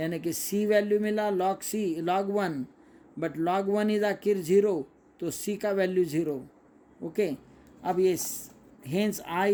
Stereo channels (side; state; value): both; identical; correlation 1.00